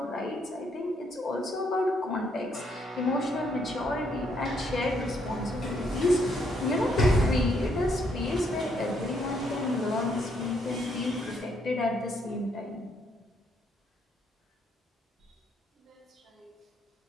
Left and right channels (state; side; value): normal; both; correlation 0.72